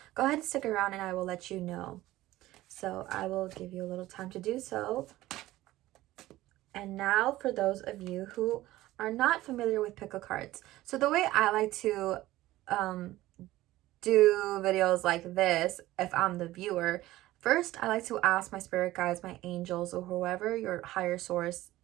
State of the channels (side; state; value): left; quieter; 16.5 dB